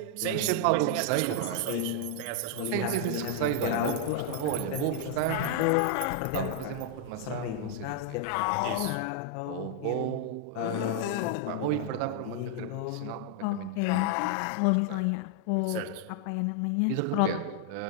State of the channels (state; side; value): different; both; correlation 0.00